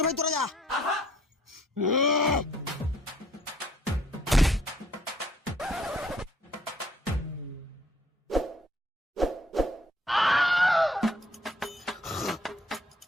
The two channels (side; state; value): both; normal; correlation 0.62